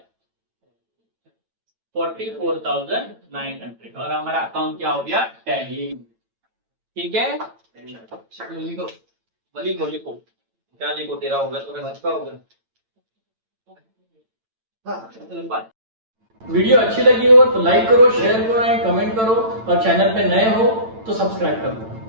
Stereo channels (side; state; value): left; late; 8.9 ms